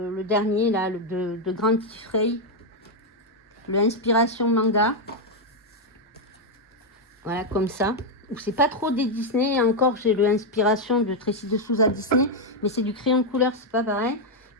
dernier, là, de Grand Tifrey. Le Inspiration Manga. Voilà, comme ça. Ou c'est pas trop des Disney. Encore, j'ai le Inspiration de Tracy de Souza Disney. Mais c'est du crayon de couleur, c'est pas pareil.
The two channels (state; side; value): normal; both; correlation 0.01